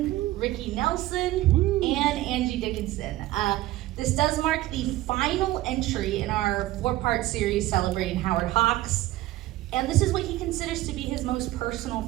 Ricky Nelson, and Angie Dickinson. This does mark the final entry in our 4-part series celebrating Howard Hawks. And this is what he considers to be his most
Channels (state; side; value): quieter; left; 16.5 dB